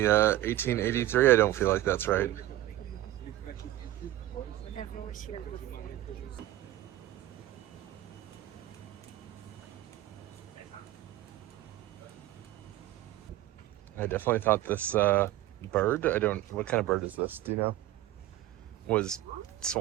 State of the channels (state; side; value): quieter; left; 14.9 dB